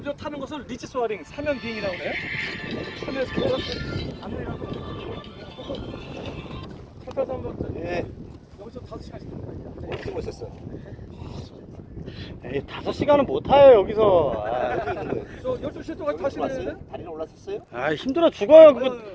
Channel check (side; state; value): both; identical; correlation 1.00